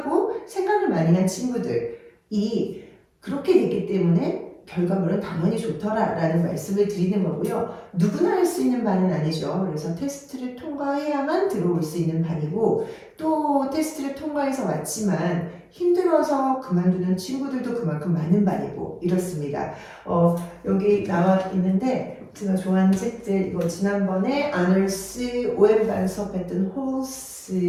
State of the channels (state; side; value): identical; both; correlation 1.00